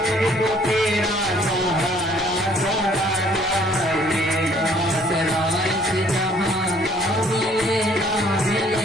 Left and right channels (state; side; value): normal; both; correlation 0.60